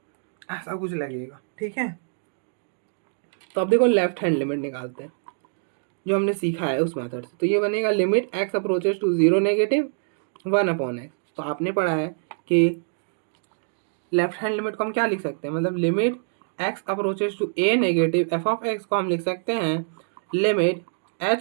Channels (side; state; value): left; silent; digital silence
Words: ऐसा कुछ लगेगा। ठीक है, तो अब देखो लेफ्ट हैंड लिमिट निकालते हैं जो हमने सीखा है उस मेथड से। तो ये बनेगा limit x approaches to zero negative 1/x। तो आपने पढ़ा है कि लेफ्ट हैंड लिमिट को हम क्या लिख सकते हैं, मतलब limit x approaches to a negative f of x को हम लिख सकते हैं limit